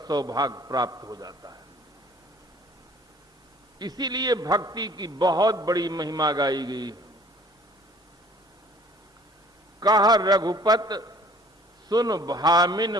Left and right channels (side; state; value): both; normal; correlation 0.53